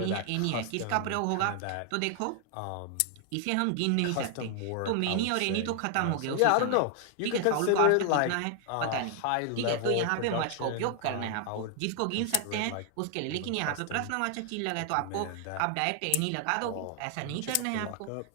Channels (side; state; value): both; different; correlation 0.00